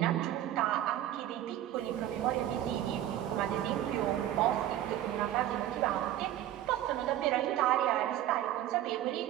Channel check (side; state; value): left; quieter; 12.6 dB